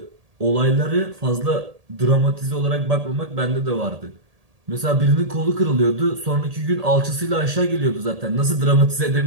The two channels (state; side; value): late; left; 1.8 ms